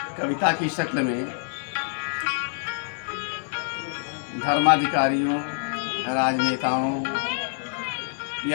कविता की शक्ल में धर्माधिकारियों, राजनेताओं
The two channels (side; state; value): right; silent; digital silence